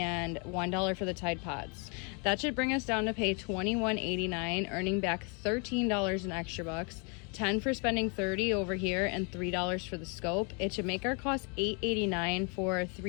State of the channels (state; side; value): quieter; right; 35.3 dB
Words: $1 for the Tide Pods. That should bring us down to pay $21.89, earning back $13 in extra bucks, 10 for spending 30 over here, and $3 for the scope. It should make our cost $8.89 for